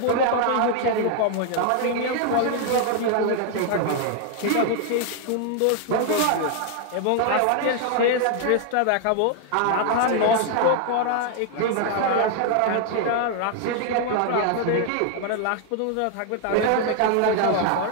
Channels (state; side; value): different; both; correlation 0.00